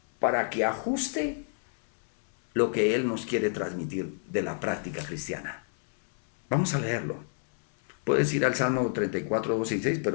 para que ajuste lo que él nos quiere transmitir de la práctica cristiana. Vamos a leerlo. Puedes ir al Salmo 34, 12 y 6,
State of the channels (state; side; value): silent; right; 59 dB below the other